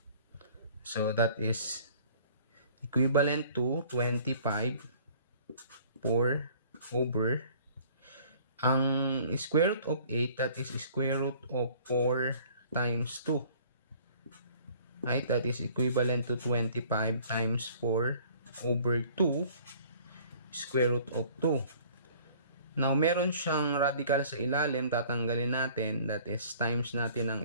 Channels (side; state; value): both; inverted; correlation -0.52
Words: So that is equivalent to 25 4 over ang square root of 8, that is square root of 4 times 2. Right? That is equivalent to 25 times 4 over 2 square root of 2. Now, meron siyang radical sa ilalim. Tatanggalin natin. That is, times natin ang